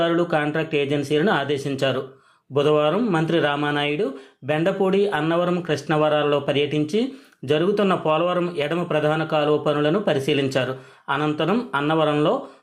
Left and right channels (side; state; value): both; identical; correlation 1.00